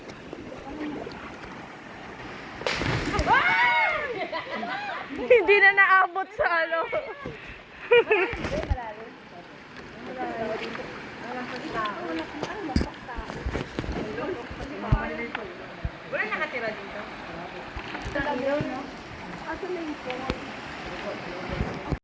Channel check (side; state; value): both; identical; correlation 1.00